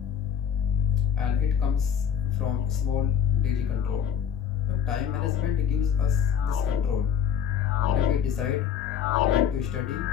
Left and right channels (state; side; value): quieter; right; 8.8 dB